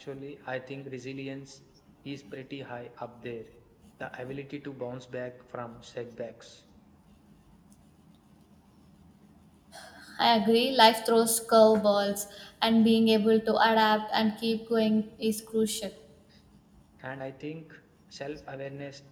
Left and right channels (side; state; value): both; identical; correlation 1.00